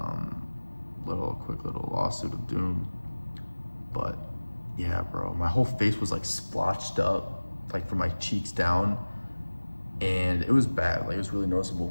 Quick little lawsuit of doom. But yeah, bro, my whole face was like splotched up, like from my cheeks down, and it was bad. Like it was really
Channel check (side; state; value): both; inverted; correlation -1.00